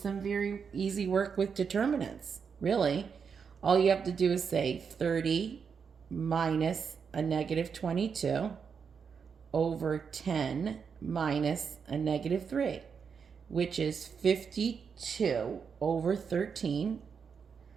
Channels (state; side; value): quieter; left; 6.3 dB